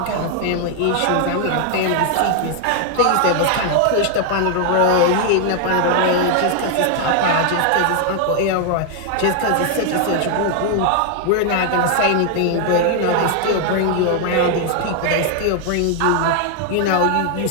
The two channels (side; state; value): both; different; correlation 0.00